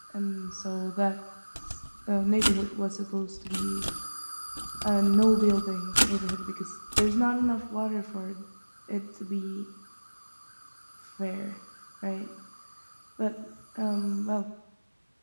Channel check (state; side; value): inverted; both; correlation -1.00